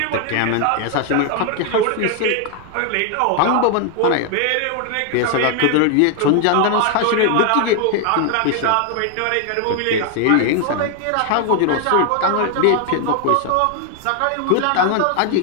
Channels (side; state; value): both; different; correlation 0.00